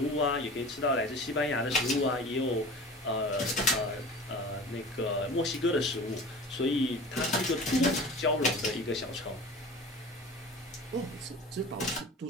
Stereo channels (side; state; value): both; normal; correlation 0.38